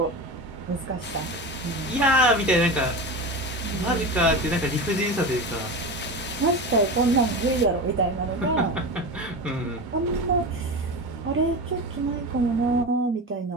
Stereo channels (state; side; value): normal; both; correlation 0.26